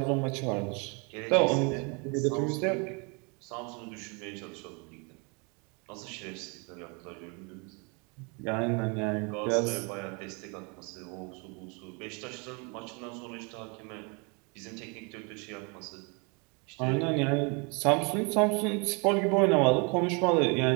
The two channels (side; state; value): left; quieter; 32.5 dB